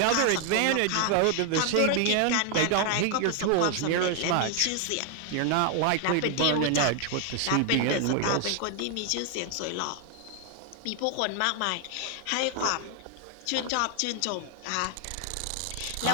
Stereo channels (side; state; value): both; different; correlation 0.00